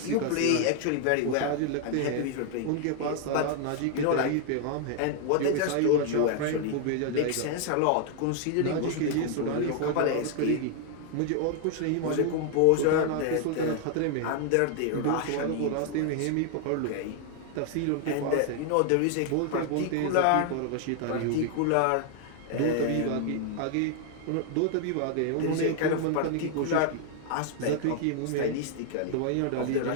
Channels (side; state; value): both; different; correlation 0.00